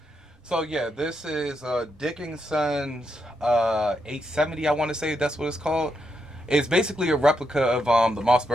So yeah, this is Dickinson's 870. I want to say that's what it's called. It's basically a replica of the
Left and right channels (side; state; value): both; normal; correlation 0.81